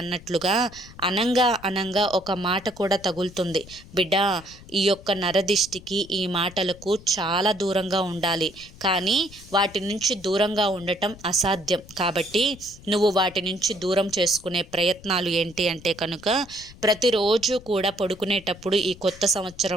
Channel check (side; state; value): left; noise; rumble, 20 dB below the sound